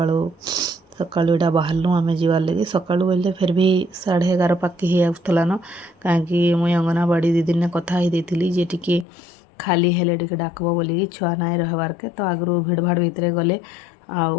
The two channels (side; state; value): right; drops out; at 9.1 s